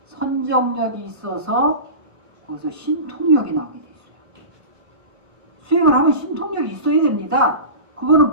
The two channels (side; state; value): left; late; 1.1 ms